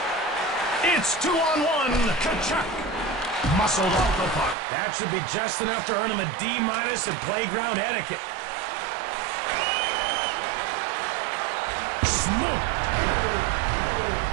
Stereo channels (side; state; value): left; drops out; at 4.5 s